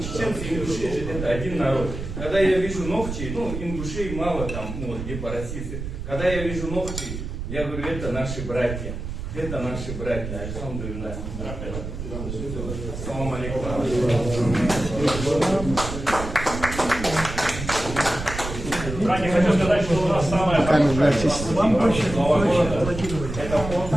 и ингуши это один народ. Когда я вижу ногти, ингушей мало там, где по России. Когда я вижу ногти, я говорю, это наши братья. Это наши братья. Альхамдулилlah. Ассаламу алейкум. Ранее хочу сказать, что у нас самая хорошая Нового года.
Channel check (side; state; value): right; noise; rumble, 7 dB below the sound